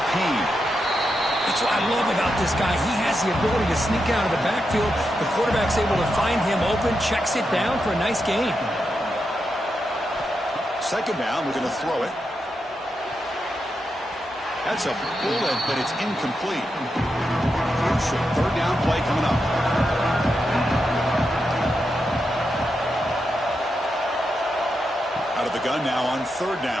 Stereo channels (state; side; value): normal; both; correlation 0.86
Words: Payne. That's what I love about this guy. He has the ability to sneak out of the backfield. The quarterback's able to find him open, checks it down for a nice gain. Second down, we're going to throw it. That's a bullet, but it's incomplete. Crucial third down play coming up. Out of the gun now on third